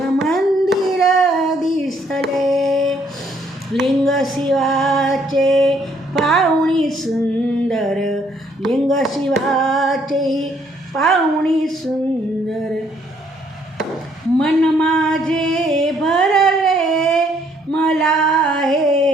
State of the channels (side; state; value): both; normal; correlation 0.67